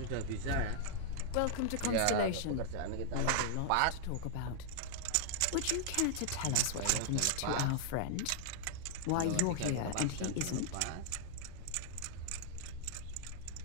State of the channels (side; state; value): both; different; correlation -0.01